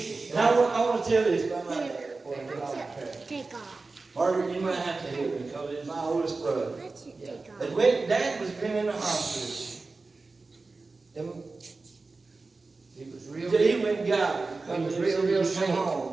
And I want to tell this about my dad before I get off the track. Take off. Margaret, you might have to help me because it's my oldest brother. That's it. Take off. And when Dad was been in the hospital, and He was real, he went and got it. He was Because real he sick. come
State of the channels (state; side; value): quieter; left; 3.8 dB